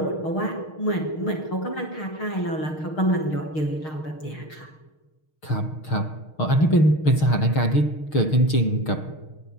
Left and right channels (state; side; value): late; right; 6.5 ms